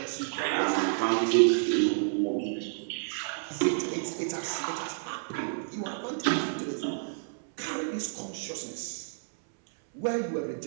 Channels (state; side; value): silent; left; 58 dB below the other